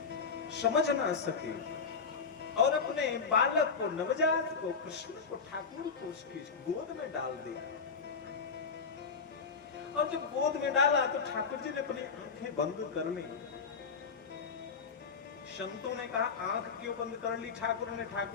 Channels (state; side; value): quieter; right; 5.4 dB